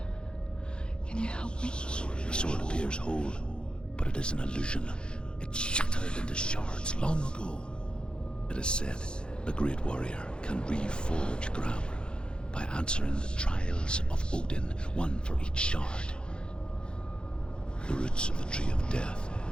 Can you help me? The sword appears whole, but it is an illusion. It shattered into shards long ago. It is said a great warrior can reforge Gramr by answering the trials of Odin, one for each shard. The roots of the Tree of Death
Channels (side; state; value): right; late; 0.051 ms